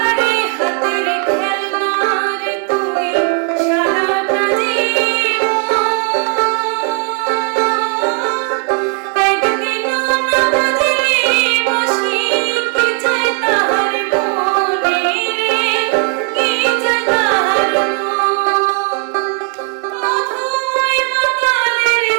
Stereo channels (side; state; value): left; quieter; 35.5 dB